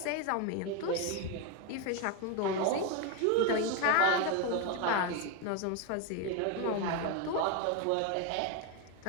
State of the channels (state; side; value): different; both; correlation 0.02